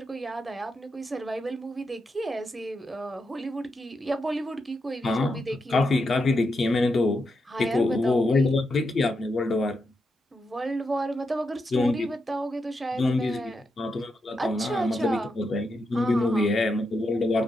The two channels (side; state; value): both; normal; correlation 0.85